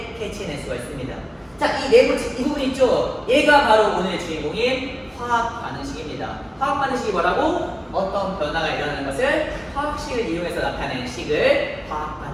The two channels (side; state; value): both; identical; correlation 1.00